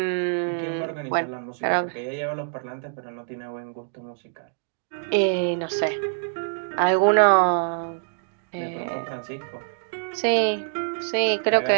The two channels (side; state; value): left; silent; digital silence